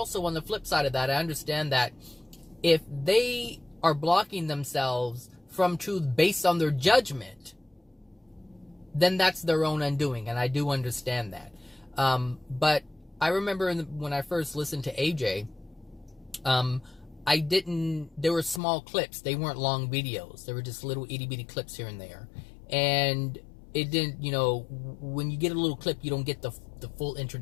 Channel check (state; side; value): drops out; right; at 18.6 s